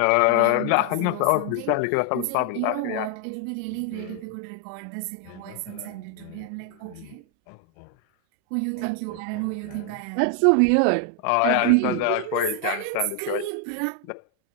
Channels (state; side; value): different; both; correlation 0.00